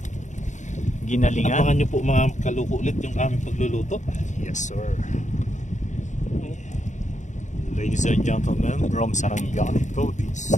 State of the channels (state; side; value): late; right; 0.35 ms